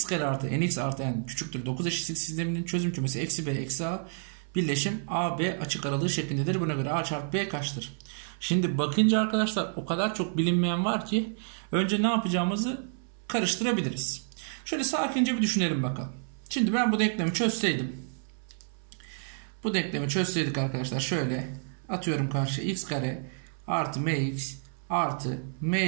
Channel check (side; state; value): left; silent; 58 dB below the other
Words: kare artı nx artı n küçüktür 9 eşitlik sisteminin çözüm kümesi eksi b eksi a birleşim a b açık aralığı şeklindedir. Buna göre a çarpı b kaçtır? Şimdi bakınca arkadaşlar o kadar çok bilinmeyen var ki önce ne yapacağımızı karıştırabiliriz. Şöyle sakince bir düşünelim bakalım. Şimdi ben bu denklemi çözseydim. Bu denklemi çözseydik arkadaşlar, şöyle atıyorum karşıya: x kare artı mx artı m